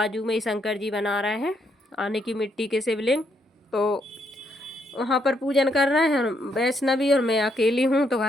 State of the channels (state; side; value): normal; both; correlation 0.75